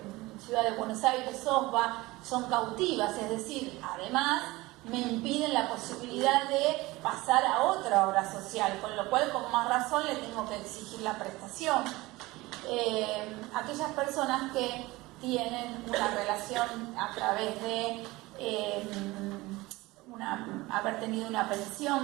Ciudad de Buenos Aires, SOSBA, son cautivas, es decir, además me impiden la posibilidad de pasar a otra obra social, con lo cual con más razón le tengo que exigir la prestación. Aquellas personas que tienen una relación a través de haber tenido una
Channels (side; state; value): left; quieter; 20.5 dB